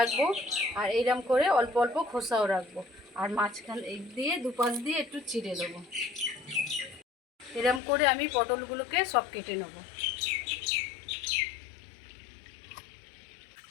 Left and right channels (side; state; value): right; drops out; at 7.8 s